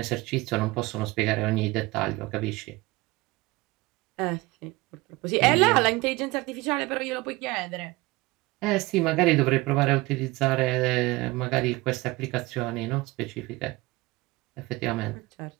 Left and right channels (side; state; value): left; quieter; 21.8 dB